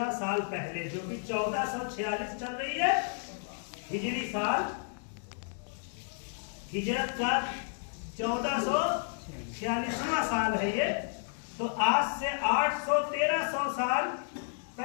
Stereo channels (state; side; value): silent; right; digital silence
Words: سال پہلے، جو بھی 1446 چل رہی ہے ہجری سال، ہجرت کا 1446واں سال ہے یہ، تو آج سے 813 سال